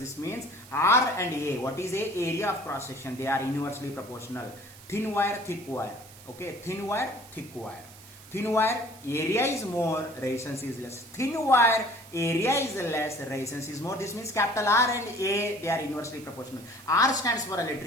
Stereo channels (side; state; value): right; noise; hiss, 20 dB below the sound